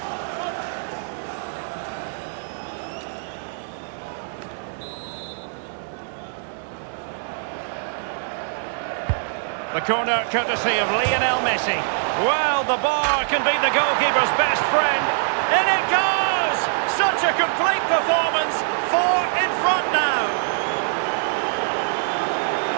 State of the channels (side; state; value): left; silent; digital silence